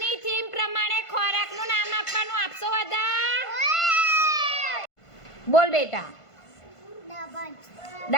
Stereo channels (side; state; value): right; late; 1.5 ms